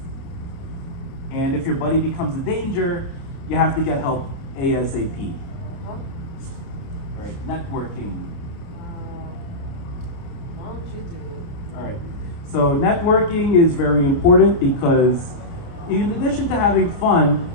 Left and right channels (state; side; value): late; right; 29 ms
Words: And if your buddy becomes a danger, you have to get help ASAP. Huh? All right, networking. Why don't you do it? All right, so networking is very important because in addition to having fun,